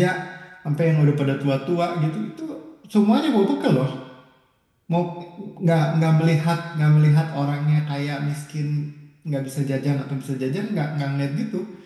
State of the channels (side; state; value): both; identical; correlation 1.00